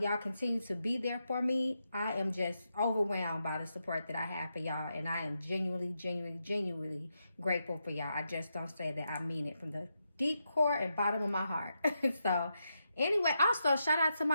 y'all continue to be there for me. I am just overwhelmed by the support that I have for y'all. And I am genuinely grateful for y'all. I just don't say that. I mean it from the deep core and bottom of my heart. So anyway, also shout out to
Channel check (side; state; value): both; inverted; correlation -0.85